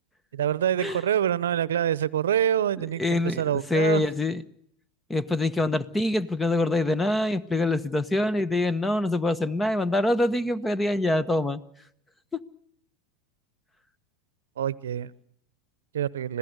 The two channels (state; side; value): normal; both; correlation 0.40